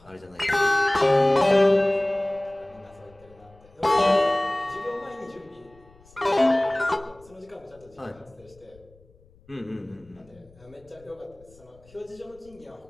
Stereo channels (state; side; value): noise; left; rumble, 27 dB below the sound